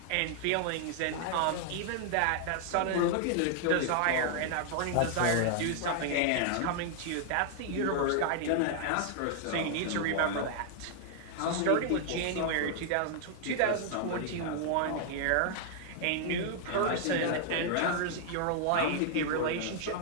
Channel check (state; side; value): different; both; correlation 0.00